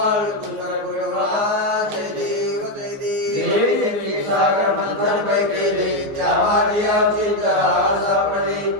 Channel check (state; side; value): late; left; 14 ms